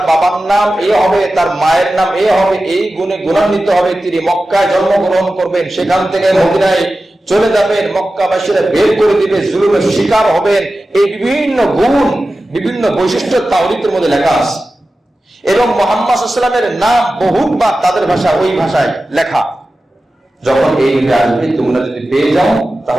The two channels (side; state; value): both; normal; correlation 0.94